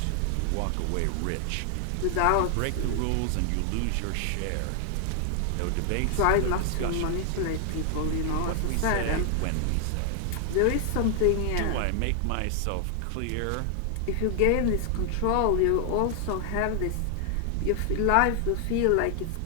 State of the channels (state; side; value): different; both; correlation 0.00